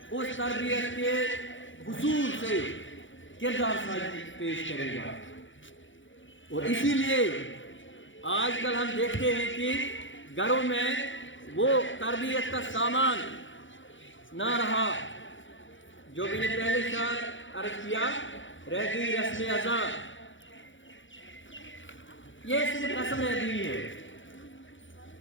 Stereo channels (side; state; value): right; late; 0.56 ms